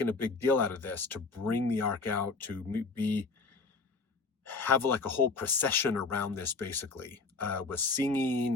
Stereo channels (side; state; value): right; quieter; 4.1 dB